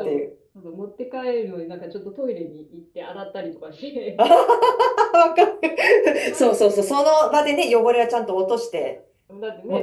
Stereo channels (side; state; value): both; identical; correlation 1.00